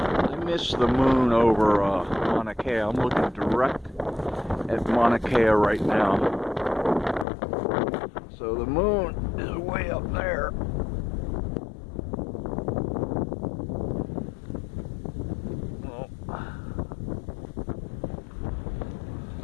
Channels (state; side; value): drops out; right; at 7.2 s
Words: miss the moon over Mauna Kea. I'm looking direct at Mauna Kea right now. So the moon is way up there.